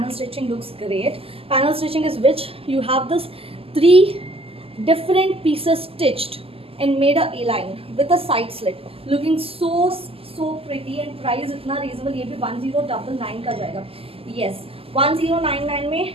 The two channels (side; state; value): left; late; 0.28 ms